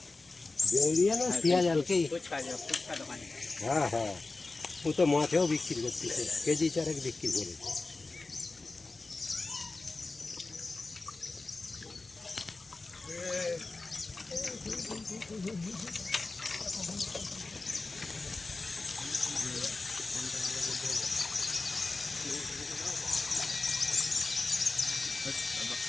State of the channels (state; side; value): quieter; right; 3.5 dB